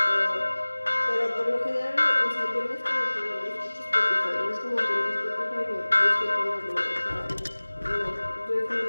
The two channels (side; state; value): both; inverted; correlation -1.00